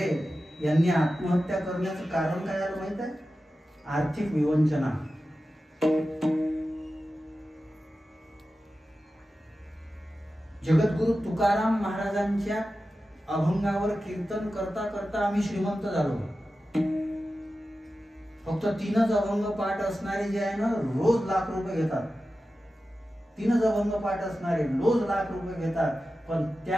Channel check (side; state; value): both; normal; correlation 0.93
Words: यांनी आत्महत्या करण्याचं कारण काय झालं माहित आहे? आर्थिक विवंचना. जगद्गुरु तुकाराम महाराजांच्या अभंगावर कीर्तन करता करता आम्ही श्रीमंत झालो. फक्त 3च अभंग पाठ असणारे जे आहे ना रोज लाख रुपये घेतात. 3च अभंग पाठ असणारे रोज लाख रुपये घेतात. पण